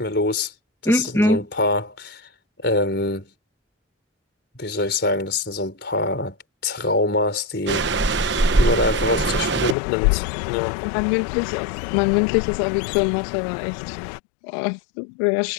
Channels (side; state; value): right; drops out; at 9.8 s